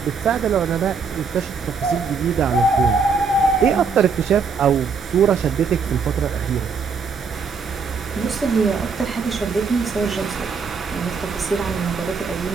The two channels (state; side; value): quieter; left; 5.2 dB